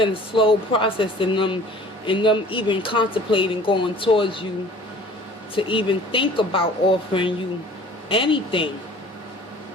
a slow process in them even contemplating going towards you, to even think about offering you anything,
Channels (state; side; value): normal; both; correlation 0.48